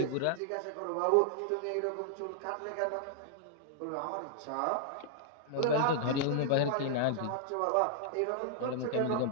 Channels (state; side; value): different; both; correlation -0.01